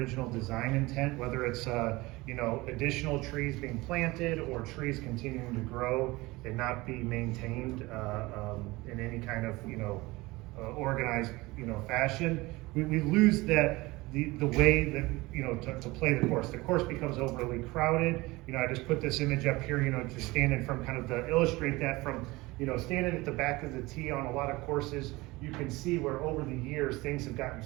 design intent, whether it's additional trees being planted or trees continuing to grow and not be maintained in any kind of organized fashion, we lose that the way that to play the course. The course becomes overly crowded. I just put this image up here, just standing from to illustrate that from standing at the back of the tee on a lot of courses, you can see where over the years things have gotten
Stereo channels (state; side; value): quieter; left; 21.4 dB